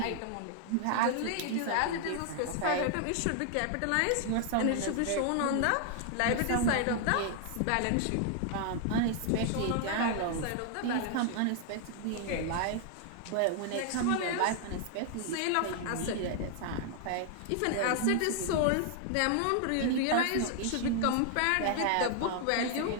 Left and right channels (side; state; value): both; different; correlation 0.00